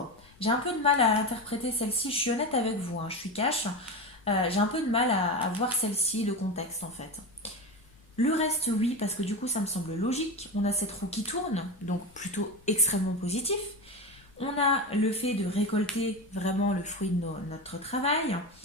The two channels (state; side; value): noise; left; rumble, 27 dB below the sound